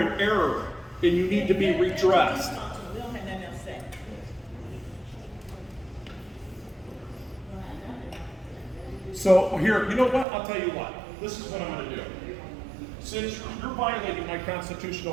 in error, and you need to be redressed. So here, you know what? I'll tell you what. This is what I'm going to do. Since you're violating my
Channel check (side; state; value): left; drops out; at 10.2 s